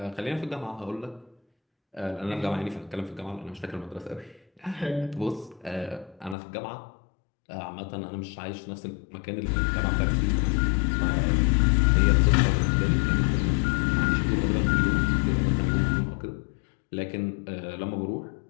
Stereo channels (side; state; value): right; drops out; at 6.4 s